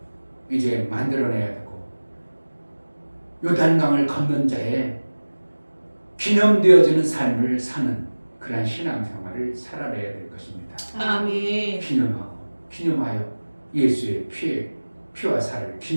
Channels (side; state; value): both; inverted; correlation -1.00